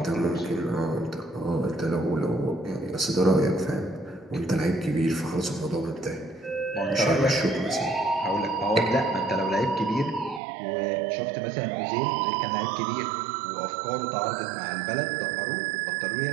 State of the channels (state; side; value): drops out; left; at 10.4 s